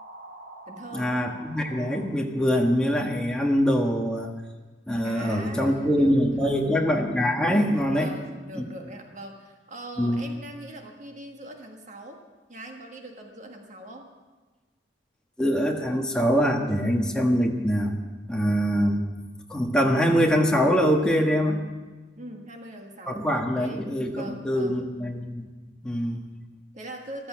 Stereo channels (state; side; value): normal; both; correlation 0.80